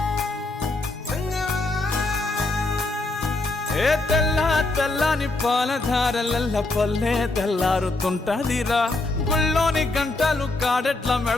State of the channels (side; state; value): right; quieter; 3.1 dB